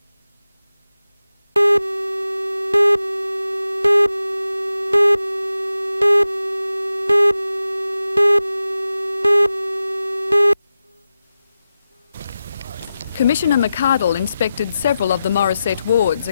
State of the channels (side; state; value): both; inverted; correlation -0.92